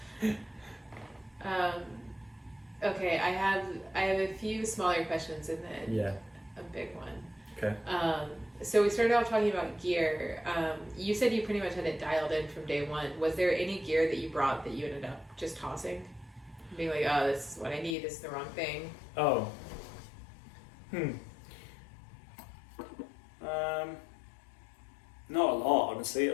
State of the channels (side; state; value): right; drops out; at 17.9 s